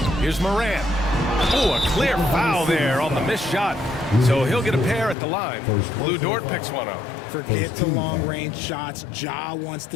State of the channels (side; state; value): right; drops out; at 5.2 s